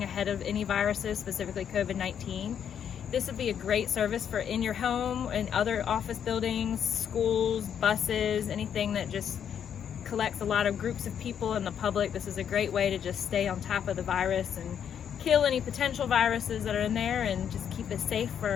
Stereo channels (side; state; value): right; quieter; 8.5 dB